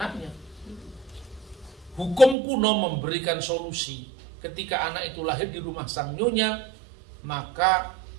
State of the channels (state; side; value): drops out; left; at 2.4 s